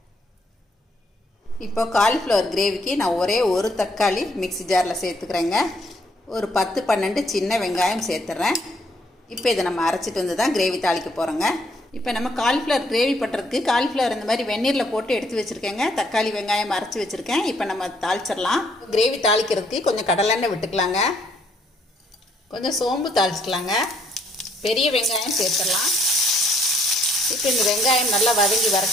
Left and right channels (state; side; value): normal; both; correlation 0.68